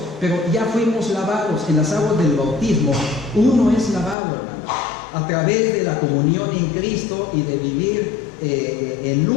pero ya fuimos lavados en las aguas del bautismo. Uno es lavado, hermanos, a través de la comunión en Cristo y de vivir en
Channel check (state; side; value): drops out; right; at 4.2 s